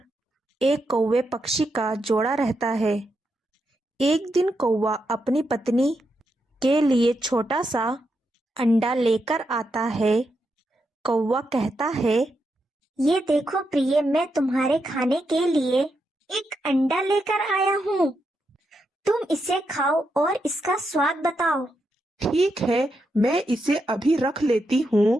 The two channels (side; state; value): both; normal; correlation 0.83